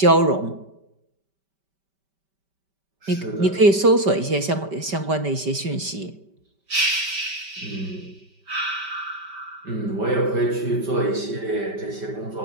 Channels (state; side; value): late; left; 5.1 ms